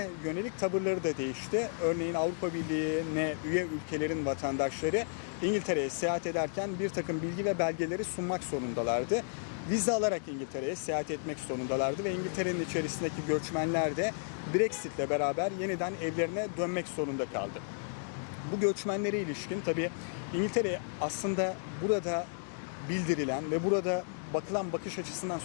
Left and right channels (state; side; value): silent; right; digital silence